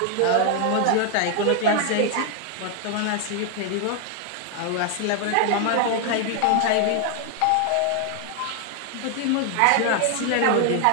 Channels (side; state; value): both; different; correlation 0.00